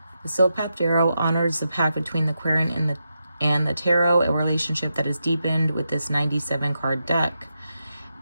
The Sealed Path Tarot honors the pact between the Querent and the Tarot, a relationship that is deepened with this 97 card deck.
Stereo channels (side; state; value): both; inverted; correlation -0.86